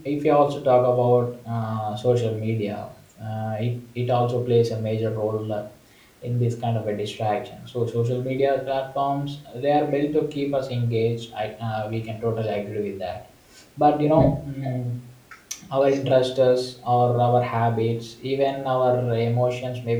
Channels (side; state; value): both; identical; correlation 1.00